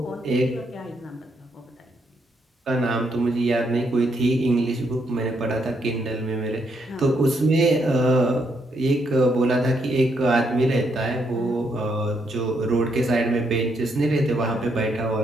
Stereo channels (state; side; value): normal; both; correlation 0.76